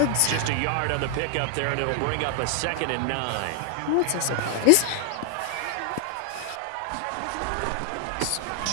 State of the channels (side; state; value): both; different; correlation 0.00